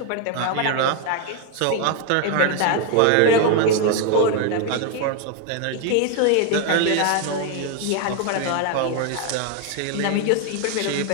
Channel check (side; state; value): both; different; correlation 0.01